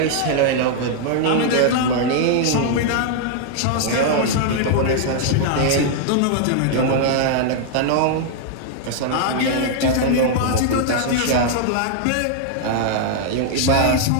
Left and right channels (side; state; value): both; different; correlation -0.01